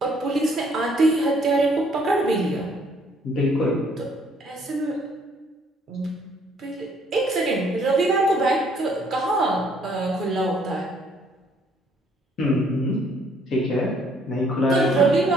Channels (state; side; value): normal; both; correlation 0.64